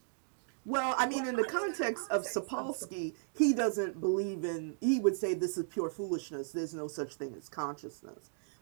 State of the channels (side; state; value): left; silent; digital silence